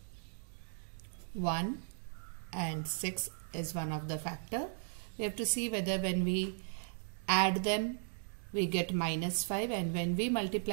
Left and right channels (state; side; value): silent; left; digital silence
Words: 1 and 6 is one of the factor. We have to see whether when we add them we get minus 5 and when we